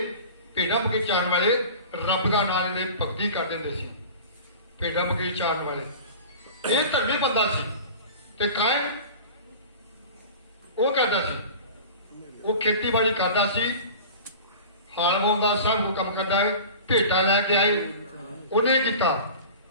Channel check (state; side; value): inverted; both; correlation -0.38